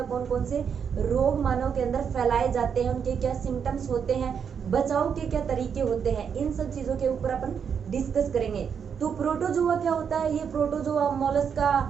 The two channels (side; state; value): left; quieter; 7.2 dB